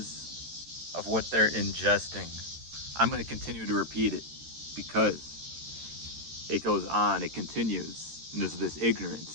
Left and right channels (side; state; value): left; late; 13 ms